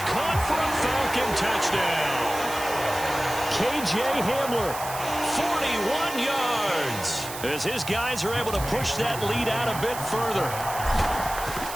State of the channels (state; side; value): noise; right; hiss, 10 dB below the sound